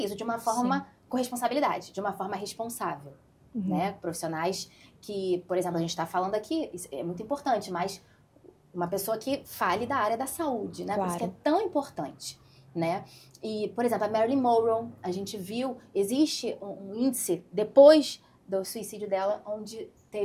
de uma forma com responsabilidade, de uma forma responsável, né? Profissionais que, por exemplo, a gente está falando aqui, isso é muito importante, mas uma pessoa que fale da área da saúde, né? Claro. Por isso que é tão importante, né? E, por exemplo, a Marilyn Monroe, a gente viu, existe um índice depois do suicídio dela, onde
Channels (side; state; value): both; identical; correlation 1.00